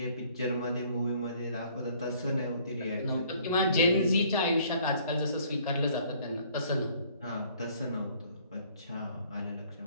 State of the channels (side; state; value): both; inverted; correlation -0.59